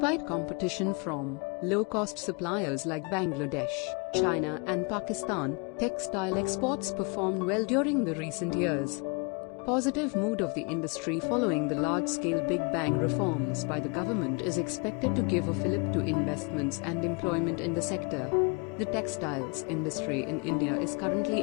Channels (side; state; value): right; quieter; 32.2 dB